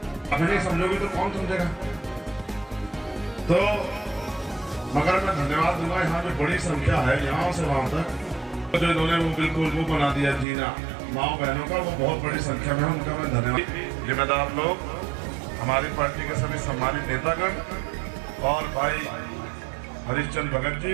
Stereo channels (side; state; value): left; drops out; at 10.5 s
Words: अगर नहीं समझोगे तो कौन समझेगा। तो मगर मैं धन्यवाद दूंगा, यहाँ पे बड़ी संख्या है यहाँ से वहां तक, जो इन्होंने वो बिल्कुल वो बना दिया जीना माँ बहनों का, वो बहुत बड़ी संख्या में है, उनका मैं धन्यवाद। जिम्मेदार लोग, हमारी पार्टी के सभी सम्मानित नेतागण और भाई हरिश्चंद्र भगत जी,